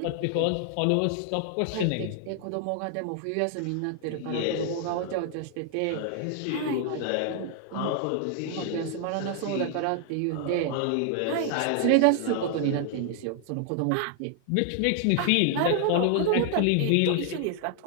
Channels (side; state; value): both; different; correlation 0.00